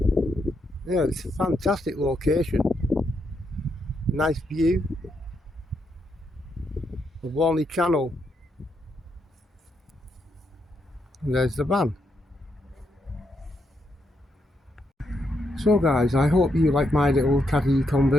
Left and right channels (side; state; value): both; normal; correlation 0.79